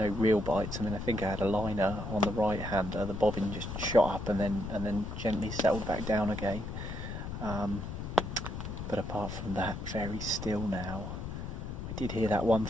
bites. I mean, I think I had a liner on the right hander, the bobbin just shot up and then gently settled back down again. But apart from that, very still now. I did hear that one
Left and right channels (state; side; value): noise; left; rumble, 6 dB below the sound